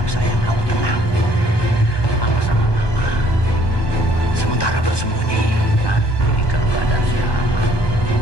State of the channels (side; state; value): right; late; 1.2 ms